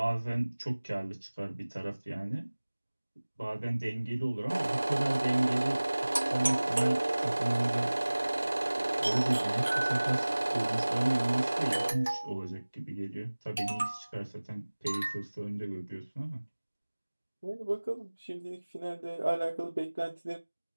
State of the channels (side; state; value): both; inverted; correlation -1.00